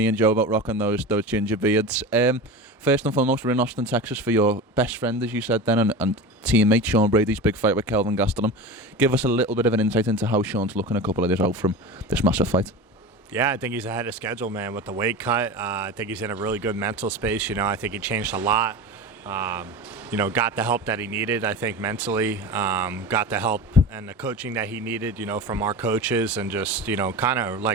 and Joe about rocking those ginger beards. First and foremost, we're in Austin, Texas for your best friend, as you said then, and teammate Sean Brady's big fight with Kelvin Gastelum. Give us a little bit of an insight into how Sean's looking a couple of days out from this massive fight. Yeah, I think he's ahead of schedule, man, with the weight cut. I think he's in a really good mental space. I think he changed a lot. Got the help that he needed, I think, mentally. Got the help and the coaching that he needed, from our coaches, and just, kind of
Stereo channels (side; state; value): both; normal; correlation 0.29